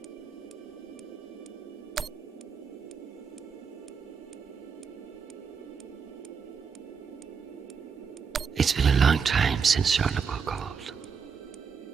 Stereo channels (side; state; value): left; quieter; 6.1 dB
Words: It's been a long time since Jonathan called.